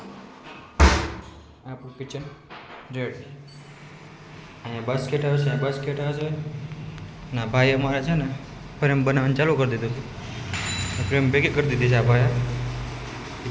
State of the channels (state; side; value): identical; both; correlation 1.00